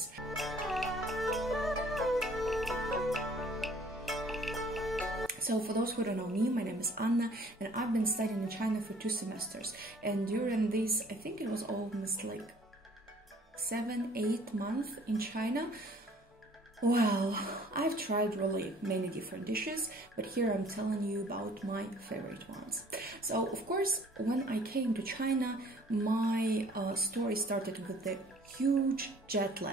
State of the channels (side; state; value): both; normal; correlation 0.55